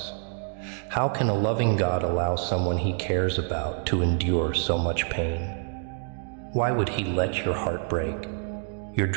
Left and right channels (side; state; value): left; silent; 55 dB below the other